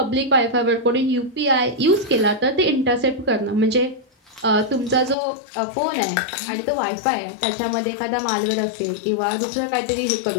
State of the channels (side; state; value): right; drops out; at 5.2 s